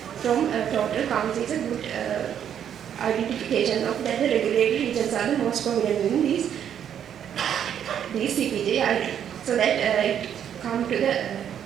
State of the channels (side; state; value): left; quieter; 9.2 dB